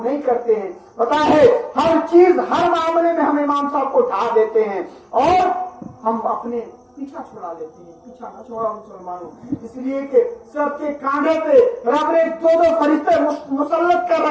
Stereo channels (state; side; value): identical; both; correlation 1.00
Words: नहीं करते हैं। पता है हर चीज हर मामले में हम इमाम साहब को ढा देते हैं और हम अपने पीछा छुड़ा लेते हैं। पीछा न छोड़ा मुसलमानों, इसलिए कि सबके कांधे पे रब ने दो फरिश्ते मुसल्लत कर